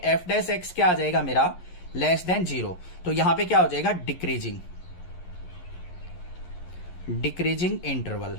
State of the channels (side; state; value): right; late; 11 ms